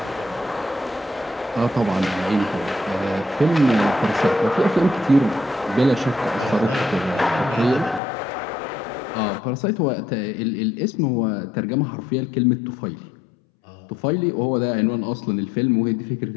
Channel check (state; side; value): drops out; right; at 8.0 s